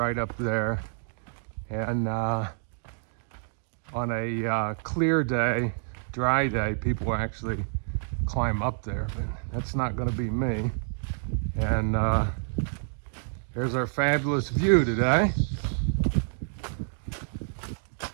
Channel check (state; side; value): silent; left; 59 dB below the other